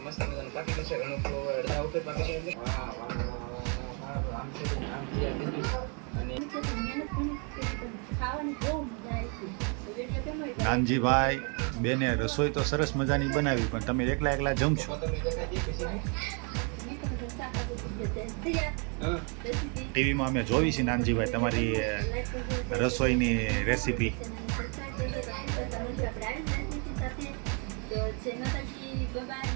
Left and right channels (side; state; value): left; quieter; 36.5 dB